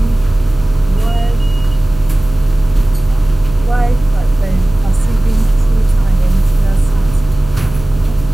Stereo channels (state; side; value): noise; right; hum, 14 dB below the sound